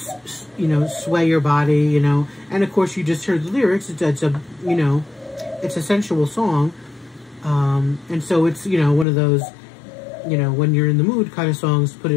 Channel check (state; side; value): drops out; right; at 9.1 s